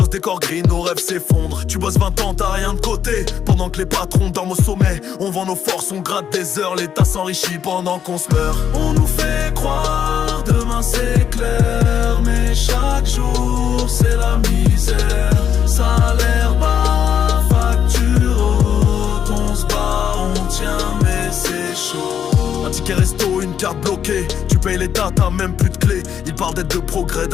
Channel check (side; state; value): right; quieter; 8.6 dB